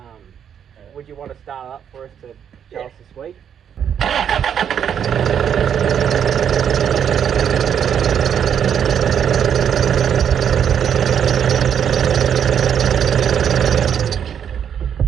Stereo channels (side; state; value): left; quieter; 8.5 dB